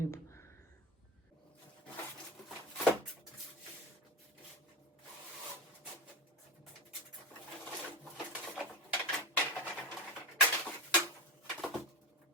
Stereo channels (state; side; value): normal; both; correlation 0.22